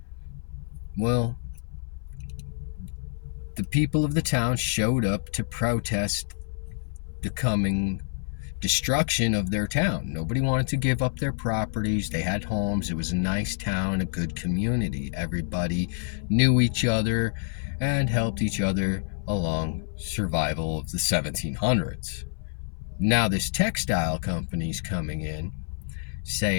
Well, the people of the town showed up to protest the coming destruction of their town. Nobody wanted to give up their properties. They had homes. It was a nice town, a good community. Everybody knew each other and helped each other along survival of the 1700s. Now this textile company's coming in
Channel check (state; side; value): silent; right; 60 dB below the other